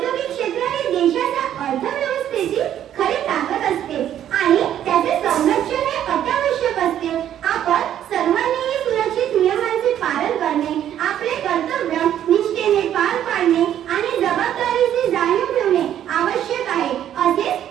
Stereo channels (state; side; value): quieter; left; 10.8 dB